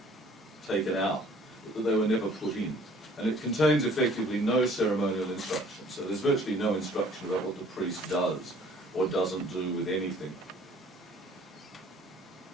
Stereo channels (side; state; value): both; normal; correlation 0.54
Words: taken out, but that they were never put in. And it contains effectively no ceremonial instruction. So there's virtually no instruction about what the priest does or doesn't do with anything.